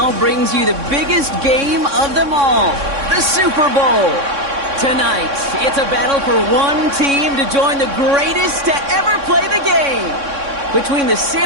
brings you the biggest game of them all, the Super Bowl. Tonight, it's a battle for one team to join the greatest to ever play the game. Between the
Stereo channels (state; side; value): late; left; 3.6 ms